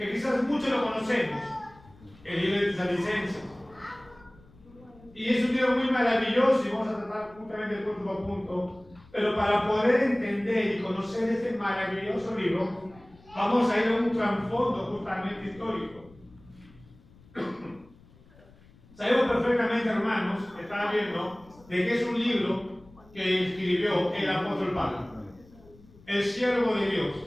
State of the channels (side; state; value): left; noise; rumble, 25 dB below the sound